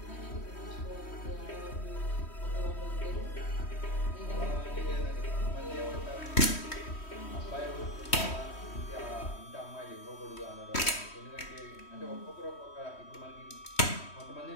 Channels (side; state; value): right; late; 3.1 ms